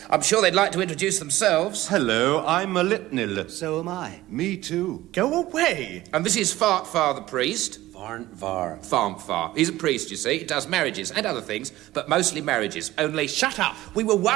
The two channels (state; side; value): quieter; left; 16.4 dB